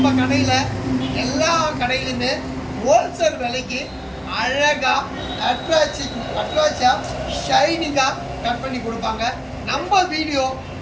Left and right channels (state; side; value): identical; both; correlation 1.00